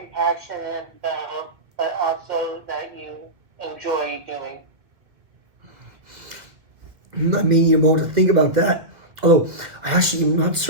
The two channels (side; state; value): left; late; 1.7 ms